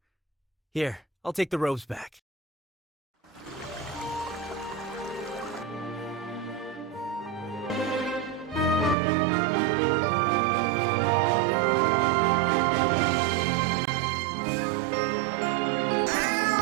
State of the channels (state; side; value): drops out; left; at 9.0 s